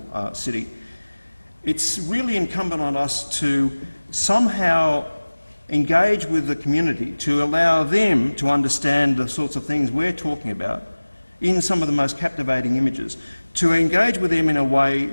city, it's really incumbent on us to somehow engage with the community, to allow them to understand the sorts of things we're talking about in some of the most captivating images, to engage with them in a way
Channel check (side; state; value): both; inverted; correlation -1.00